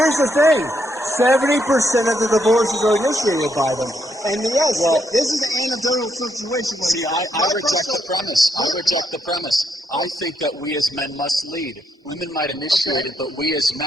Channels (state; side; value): normal; both; correlation 0.77